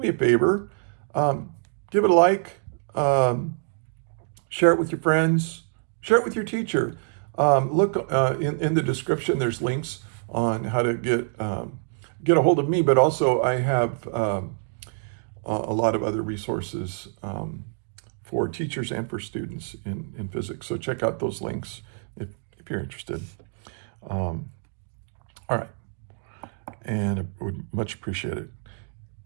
a favor. Give it a like. Share it with your friends. Share it with your teacher. Look in the description. There's links on how to get a hold of me. But also, I have a lot of other resources for teachers and for students in physics. So check out those links if you're interested. All right, and I would much appreciate it.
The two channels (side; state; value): left; silent; digital silence